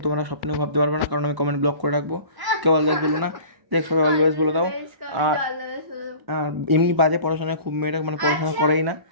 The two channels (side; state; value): left; late; 1.0 ms